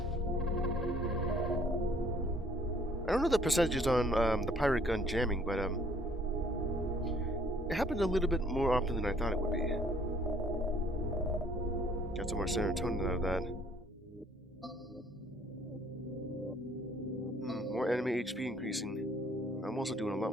I don't know the percentages on the pirate gun jamming, but it happened a little bit more often than I thought it would be. Got some more serotonin out of that. More more enemy HP increasing. I'm also doing a lot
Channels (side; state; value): both; normal; correlation 0.61